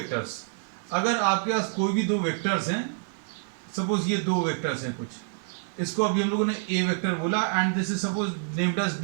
अगर आपके पास कोई भी दो वेक्टर्स हैं, सपोज ये दो वेक्टर्स हैं कुछ, इसको अभी हम लोगों ने ए वेक्टर बोला and this is suppose named as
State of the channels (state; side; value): silent; left; digital silence